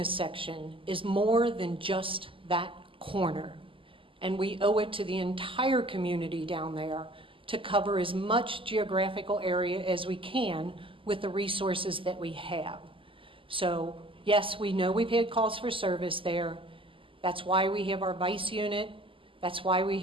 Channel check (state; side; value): late; left; 0.25 ms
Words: section is more than just that corner. And we owe it to the entire community down there to cover as much geographical area as we can with the resources that we have. So yes, we know we've had calls for service there. That's why we have our vice unit. That's why we